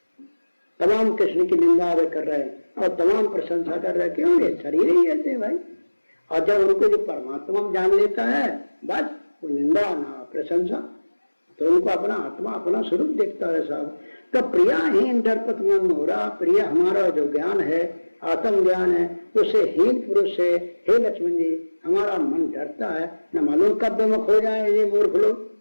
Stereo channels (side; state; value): both; inverted; correlation -1.00